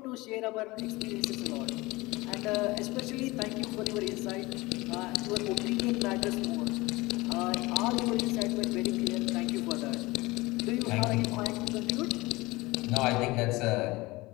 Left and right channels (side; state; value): right; quieter; 21.7 dB